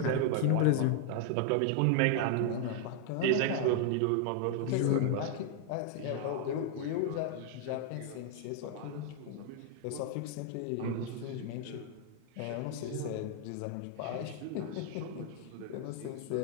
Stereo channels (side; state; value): both; different; correlation 0.00